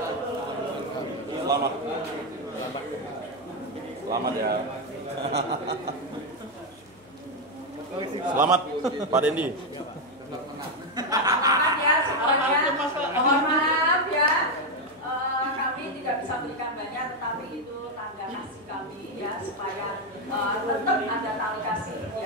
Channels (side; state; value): left; noise; hum, 29 dB below the sound